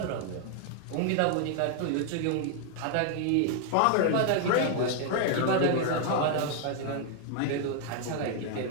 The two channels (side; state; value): both; different; correlation 0.00